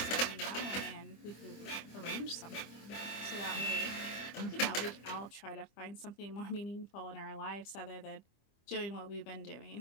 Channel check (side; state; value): right; late; 25 ms